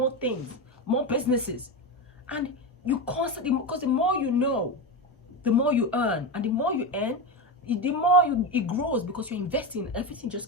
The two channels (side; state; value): both; normal; correlation 0.17